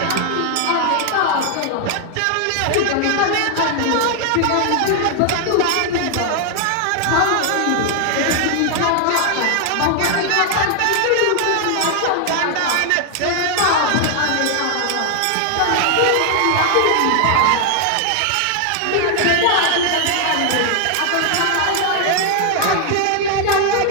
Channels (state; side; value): different; both; correlation 0.00